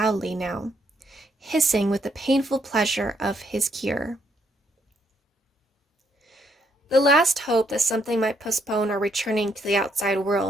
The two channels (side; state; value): both; normal; correlation 0.73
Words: now, hissing with the painful pleasure of his cure. The last hope that something might postpone our returning to the outside